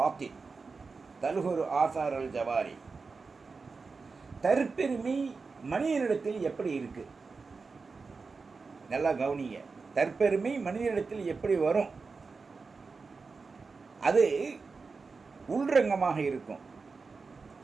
தல்ஹுரு ஆசார் அல் ஜவாரி. தற்பெருமை மனிதனிடத்தில் எப்படி இருக்கு? நல்லா கவனிங்க. தற்பெருமை மனிதனிடத்தில் எப்படி வரும்? அது உள்ரங்கமாக இருக்கும்.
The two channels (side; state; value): left; quieter; 4.5 dB